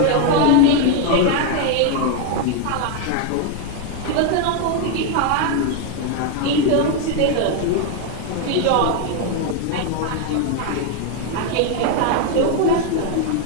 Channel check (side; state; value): both; different; correlation 0.01